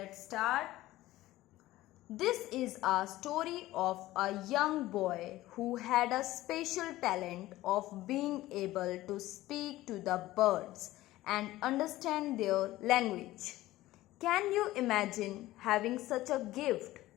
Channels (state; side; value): quieter; right; 16.5 dB